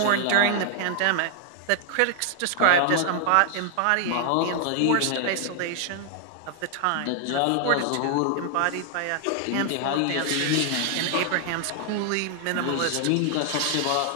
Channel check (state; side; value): different; both; correlation 0.00